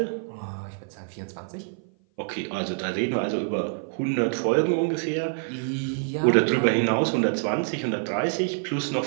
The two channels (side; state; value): left; silent; 56 dB below the other